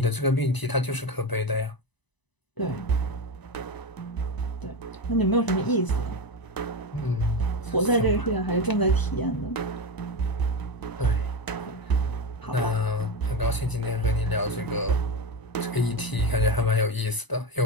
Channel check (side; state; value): right; late; 1.0 ms